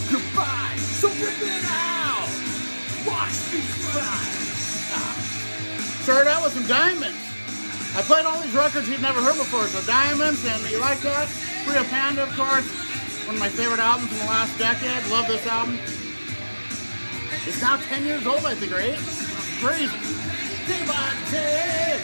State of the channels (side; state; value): both; inverted; correlation -1.00